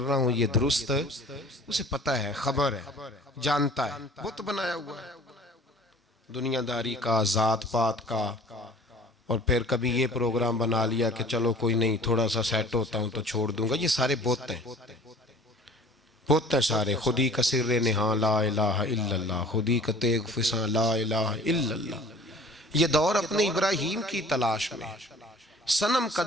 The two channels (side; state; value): both; normal; correlation 0.47